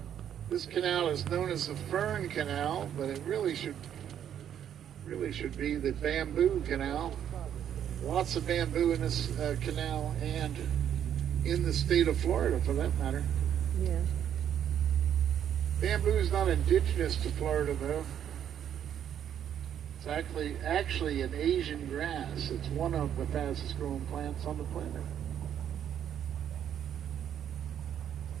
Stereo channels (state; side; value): quieter; left; 9.6 dB